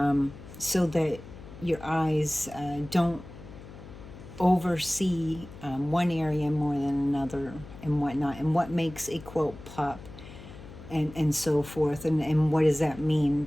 so that your eyes don't oversee one area more than another and whatnot, and what makes a quilt pop and so forth, and what does that mean.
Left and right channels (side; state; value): left; noise; hum, 16 dB below the sound